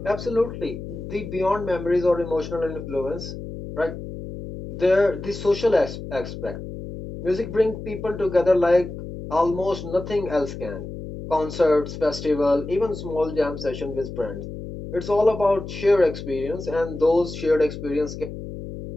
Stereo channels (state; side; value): noise; left; hum, 9 dB below the sound